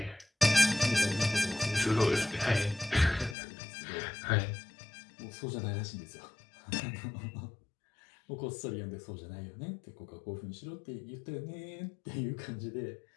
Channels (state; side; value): drops out; right; at 3.4 s